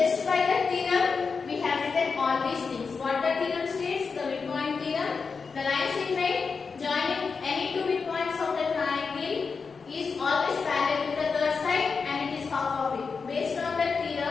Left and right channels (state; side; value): quieter; right; 5.1 dB